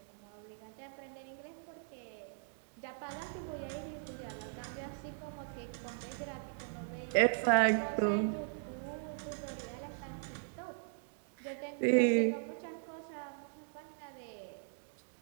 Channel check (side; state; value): left; silent; digital silence